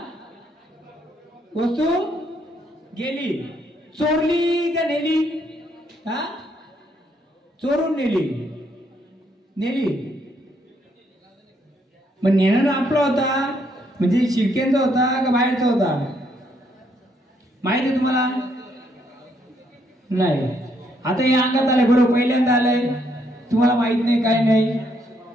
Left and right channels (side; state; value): both; normal; correlation 0.72